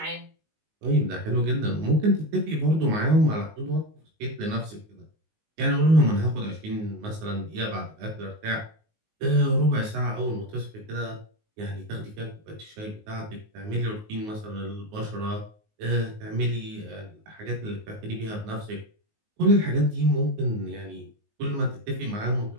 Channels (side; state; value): left; late; 19 ms